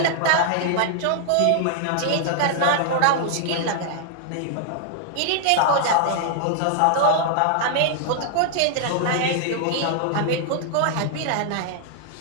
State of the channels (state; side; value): different; both; correlation 0.00